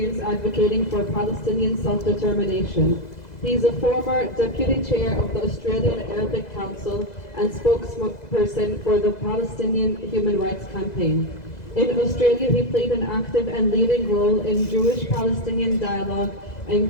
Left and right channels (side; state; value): right; late; 2.0 ms